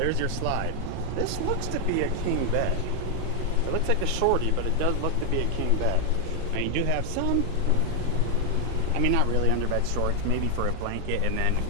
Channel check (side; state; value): both; different; correlation 0.00